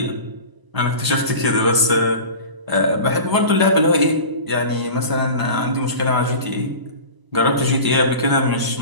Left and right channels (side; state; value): left; late; 1.0 ms